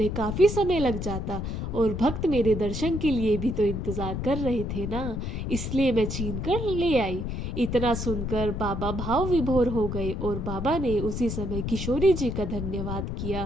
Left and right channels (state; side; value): noise; left; rumble, 4 dB below the sound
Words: काफी समय लग जाता, और भक्त मेरे दर्शन के लिए भी तो इंतजार कर रहे थे ना, इसलिए मैं छीन कर ले आई। इतना सुनकर बाबा भाव विभोर हो गए और बाबा ने उसी समय किशोरी जी का धन्यवाद